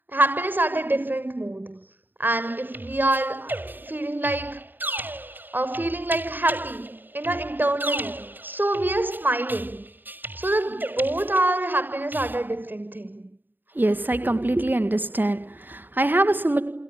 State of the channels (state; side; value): late; left; 0.092 ms